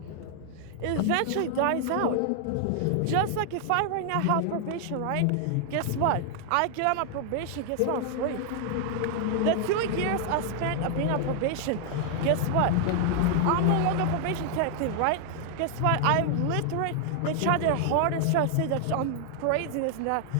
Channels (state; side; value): different; both; correlation 0.00